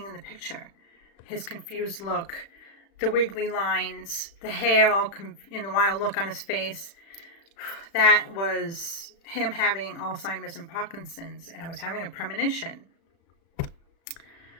in the picture. His confused look, the wiggly lines, the hair all in the wild look on his face. That was him having Alzheimer's and Parkinson's, and I was having a premonition.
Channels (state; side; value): late; right; 36 ms